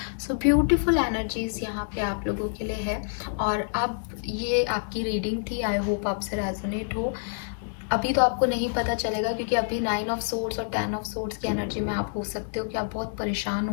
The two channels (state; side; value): silent; right; 60 dB below the other